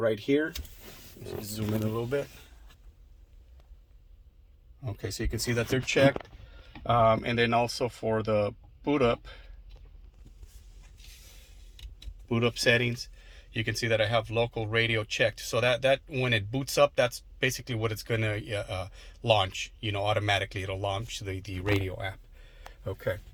here. Zoom in a little bit. Okay, so you can see that they're checked. And then also for the boot up settings, you can see that I have local radio checked. So that when it boots up, that's basically what it's going to launch. Automatically it'll launch the radio app. Okay,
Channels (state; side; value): identical; both; correlation 1.00